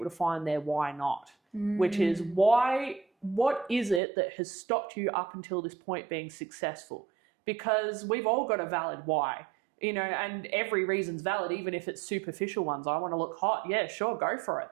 to find their why not, which is what is it that has stopped you up until this point being successful? Because we've all got a valid why. You know, and every reason's valid, even if it's superficial ones. I want to look hot. Yeah, sure, go for it.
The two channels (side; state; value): left; drops out; at 4.0 s